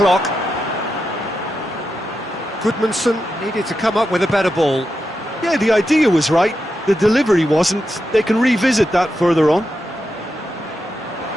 Goodmanson needed to come up with a better ball. Yeah, the idea was right. The delivery wasn't. They can revisit that further on.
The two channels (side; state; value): both; normal; correlation 0.87